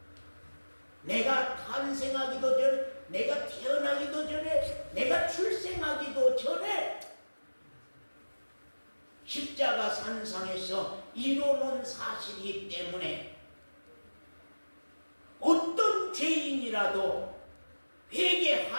내가 탄생하기도 전에 내가 태어나기도 전에 내가 출생하기도 전에 십자가 산상에서 이루어놓은 사실이기 때문에 어떤 죄인이라도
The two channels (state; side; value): inverted; both; correlation -1.00